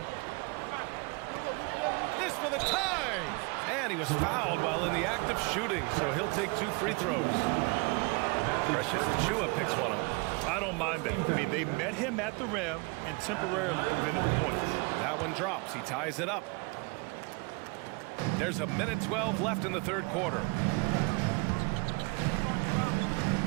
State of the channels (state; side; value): quieter; left; 29.6 dB